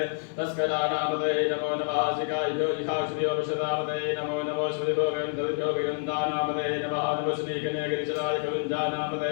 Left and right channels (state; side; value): silent; right; 59 dB below the other